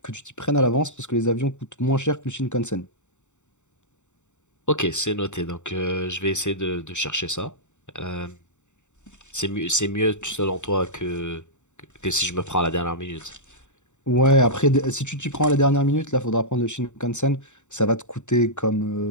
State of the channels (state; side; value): late; right; 0.84 ms